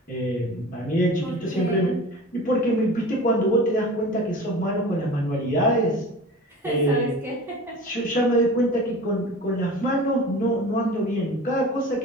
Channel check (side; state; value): both; normal; correlation 0.38